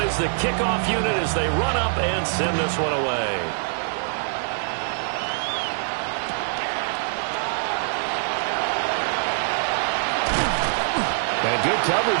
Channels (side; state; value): left; silent; 63 dB below the other